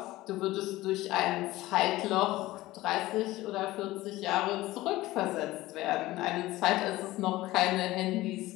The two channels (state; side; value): quieter; right; 17.6 dB